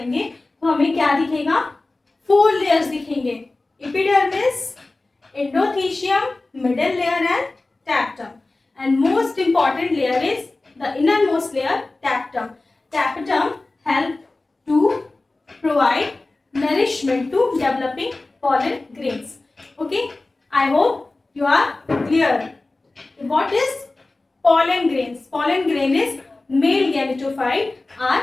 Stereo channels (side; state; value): right; quieter; 3.1 dB